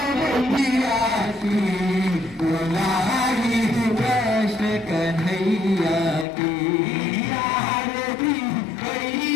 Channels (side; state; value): right; drops out; at 6.2 s